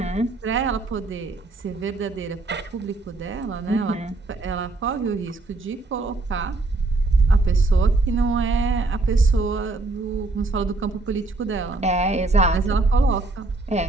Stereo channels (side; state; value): left; quieter; 3.2 dB